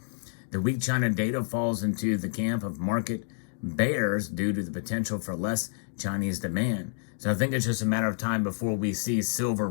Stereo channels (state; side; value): silent; right; digital silence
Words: The weak China data falls into the camp of market bears due to the potential for less Chinese demand. So I think it's just a matter of time before we see silver